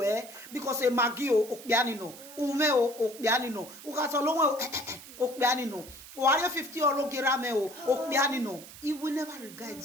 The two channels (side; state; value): right; noise; hiss, 16 dB below the sound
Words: because a magio okpianino, umeo okpianino, ukasolongo okpianino, warrior 50 or gerameo okpianino. He will never regard